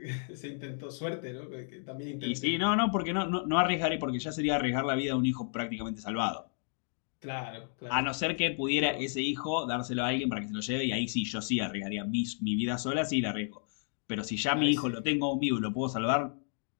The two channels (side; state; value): right; silent; 56 dB below the other